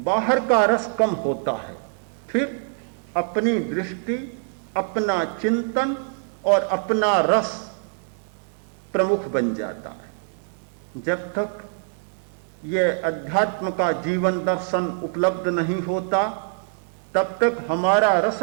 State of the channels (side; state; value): left; silent; digital silence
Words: बाहर का रस कम होता है, फिर अपनी दृष्टि, अपना चिंतन और अपना रस प्रमुख बन जाता है। जब तक यह अध्यात्म का जीवन दर्शन उपलब्ध नहीं होता तब तक हमारा रस